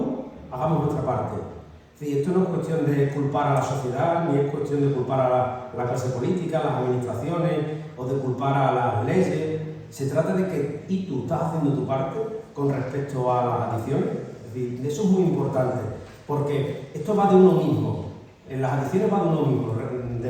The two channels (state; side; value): identical; both; correlation 1.00